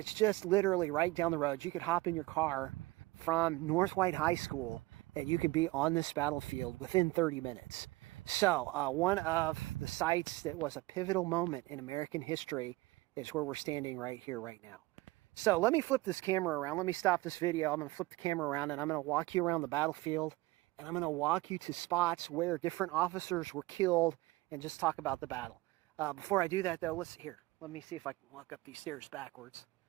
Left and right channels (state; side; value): quieter; left; 20.5 dB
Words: just literally right down the road. You could hop in your car from North White High School, and you could be on this battlefield within 30 minutes. So, one of the sites that was a pivotal moment in American history is where we're standing right here, right now. So, let me flip this camera around. Let me stop this video. I'm going to flip the camera around, and I'm going to walk you around the battlefield, and I'm going to walk you to spots where different officers were killed and just talk about the battle. Before I do that, though, let me see if I can walk up these stairs backwards.